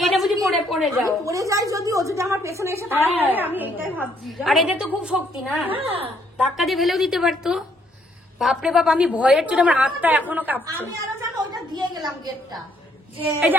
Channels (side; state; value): both; normal; correlation 0.68